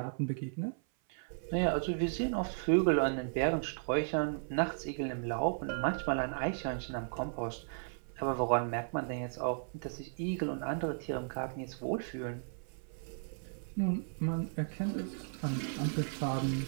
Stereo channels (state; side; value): silent; left; 54 dB below the other